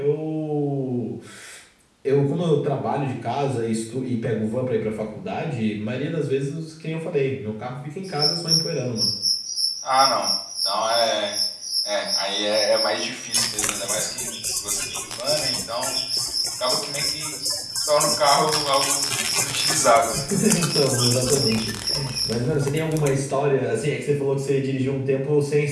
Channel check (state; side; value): identical; both; correlation 1.00